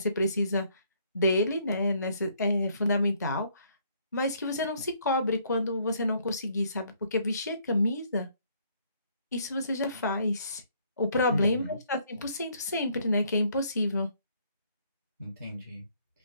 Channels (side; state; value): both; inverted; correlation -0.66